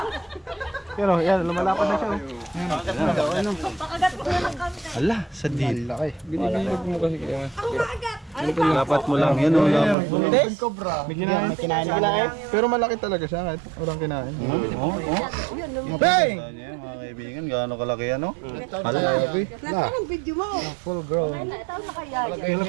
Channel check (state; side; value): drops out; left; at 10.0 s